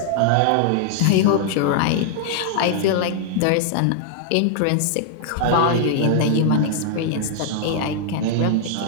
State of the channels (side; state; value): both; different; correlation -0.01